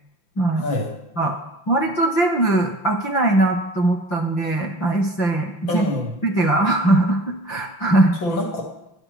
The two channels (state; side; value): late; right; 5.9 ms